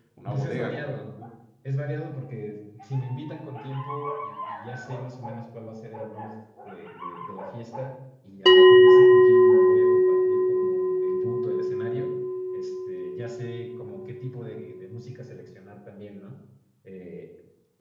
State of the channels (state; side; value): identical; both; correlation 1.00